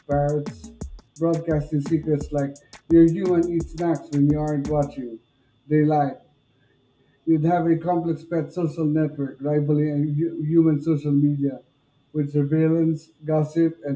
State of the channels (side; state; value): both; identical; correlation 1.00